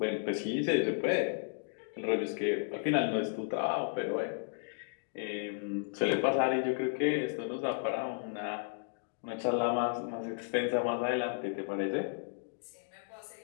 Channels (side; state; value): right; silent; digital silence